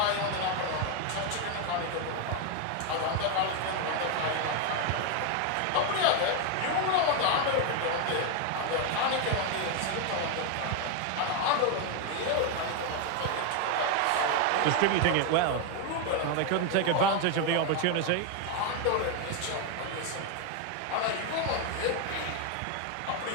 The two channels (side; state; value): both; different; correlation 0.01